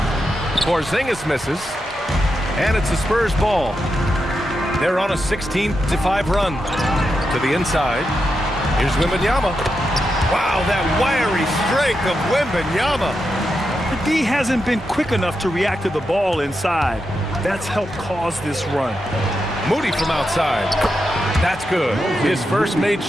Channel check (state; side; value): normal; both; correlation 0.86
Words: Porzingis misses, and it's the Spurs ball. They're on a 16-5 run to the inside. Here's Wembanyama. Wow, that wiry strength of Wembanyama. The D hasn't been quick enough to react to the ball inside. That's helped cause this run. Moody from outside. That's good. His first made